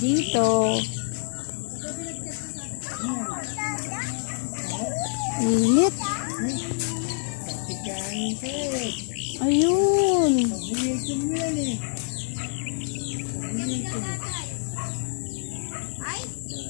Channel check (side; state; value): right; silent; 60 dB below the other